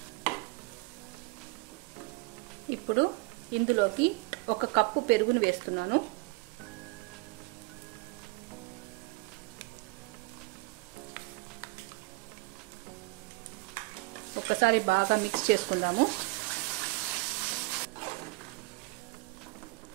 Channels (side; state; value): left; quieter; 25.8 dB